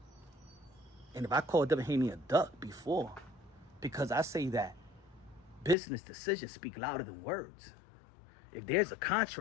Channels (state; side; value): drops out; right; at 5.8 s